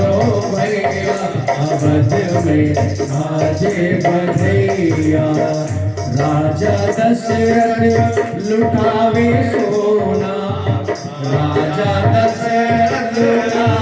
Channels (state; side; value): identical; both; correlation 1.00